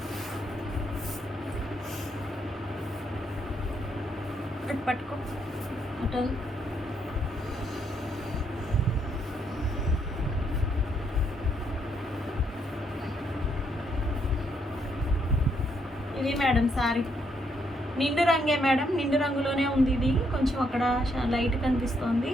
పట్టుకో అటు. ఇది మేడం శారీ నిండు రంగే మేడం. నిండు రంగులోనే ఉంది. ఇది కొంచెం అక్కడ లైట్ కనిపిస్తోంది,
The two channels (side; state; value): both; normal; correlation 0.74